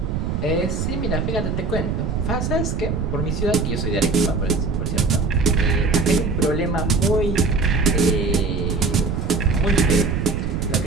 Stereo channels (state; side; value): noise; right; rumble, 1 dB below the sound